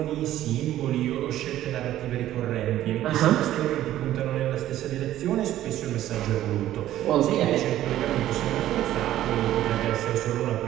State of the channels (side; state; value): left; quieter; 13.3 dB